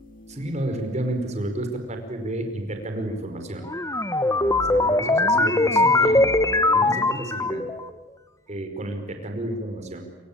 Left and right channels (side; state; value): both; normal; correlation 0.47